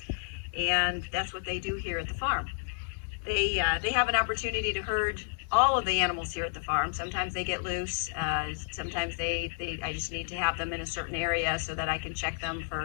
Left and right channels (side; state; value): right; silent; digital silence